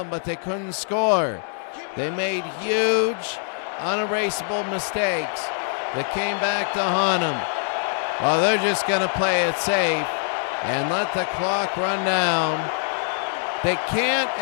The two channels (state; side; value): silent; right; 58 dB below the other